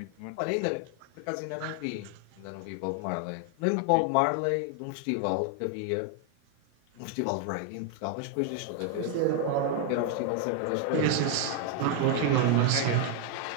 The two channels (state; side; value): different; both; correlation 0.01